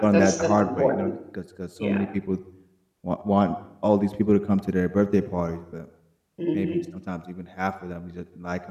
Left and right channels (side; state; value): both; identical; correlation 1.00